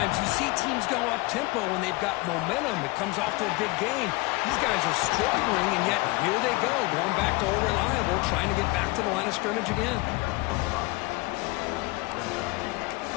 you see teams go up-tempo when they've got momentum. It comes off to a big gain. These guys are struggling, and yet here they go, going back to old reliable, trying to get back to the line of scrimmage again.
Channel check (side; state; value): right; quieter; 23.2 dB